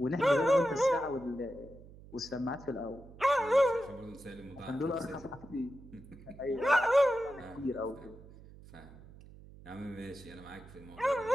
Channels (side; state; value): right; noise; hum, 19 dB below the sound